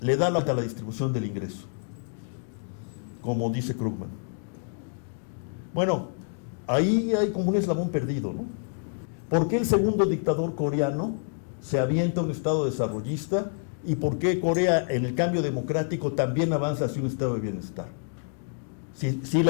le da la distribución del ingreso, como dice Krugman. Bueno, ahí hay como un eslabón perdido, ¿no? ¿Por qué el segundo dictador coreano se avienta a un estado desarrollista? ¿Y por qué Corea, en el cambio democrático, también avanza hacia un estado de bienestar? Si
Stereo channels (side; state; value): right; silent; 60 dB below the other